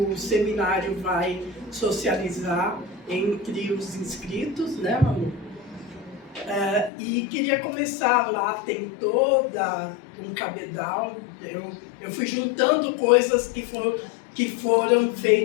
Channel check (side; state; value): right; drops out; at 6.9 s